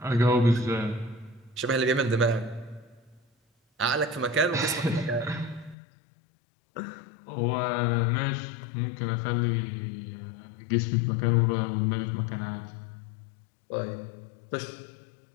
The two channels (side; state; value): right; drops out; at 5.8 s